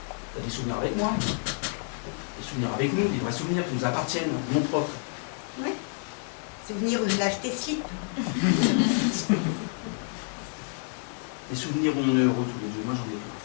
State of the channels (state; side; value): silent; right; 57 dB below the other